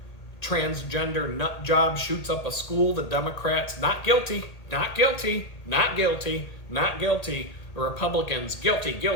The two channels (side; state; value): right; late; 1.8 ms